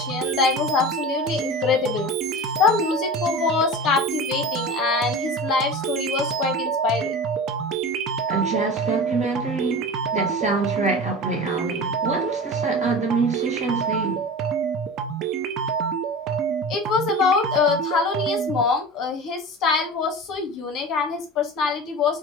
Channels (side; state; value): both; normal; correlation 0.32